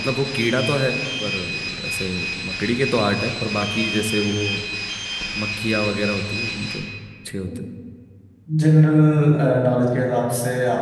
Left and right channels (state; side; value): identical; both; correlation 1.00